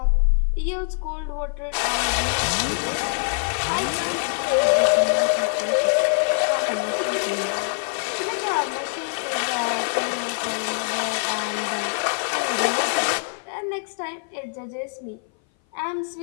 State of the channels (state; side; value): silent; right; 58 dB below the other